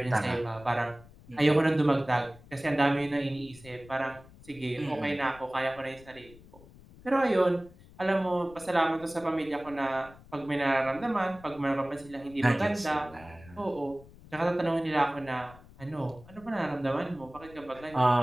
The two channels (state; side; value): noise; left; rumble, 22 dB below the sound